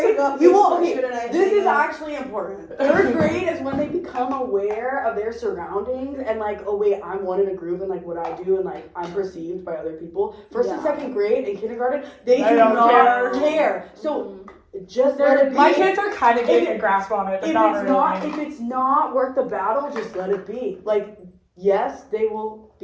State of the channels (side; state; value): both; identical; correlation 1.00